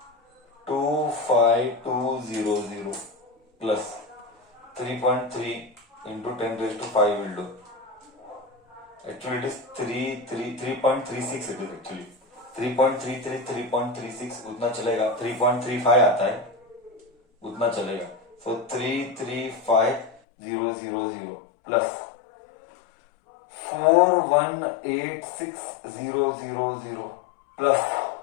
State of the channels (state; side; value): drops out; right; at 20.2 s